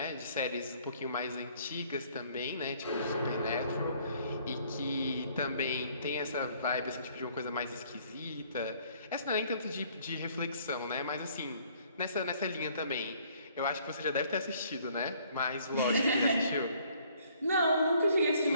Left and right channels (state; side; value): inverted; both; correlation -0.61